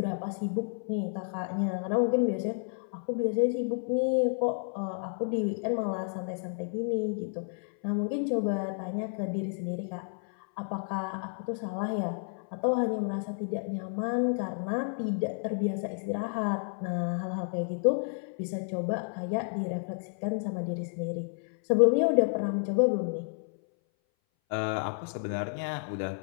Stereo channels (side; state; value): right; silent; 57 dB below the other